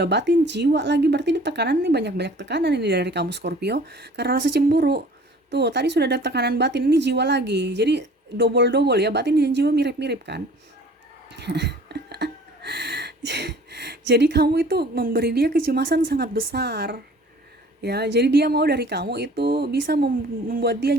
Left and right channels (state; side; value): normal; both; correlation 0.49